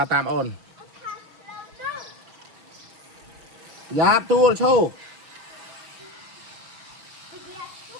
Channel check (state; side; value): late; left; 6.3 ms